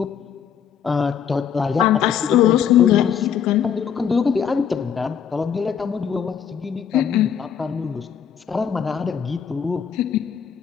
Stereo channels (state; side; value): quieter; right; 8.0 dB